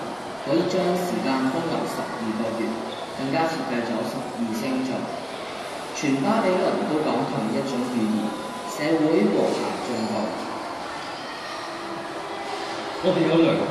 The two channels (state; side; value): identical; both; correlation 1.00